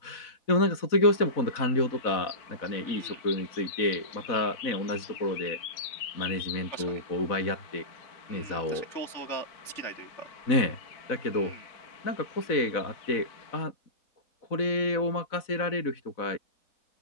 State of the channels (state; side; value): late; right; 4.0 ms